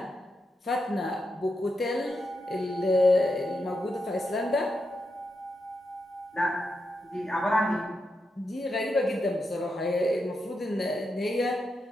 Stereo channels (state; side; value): normal; both; correlation 0.85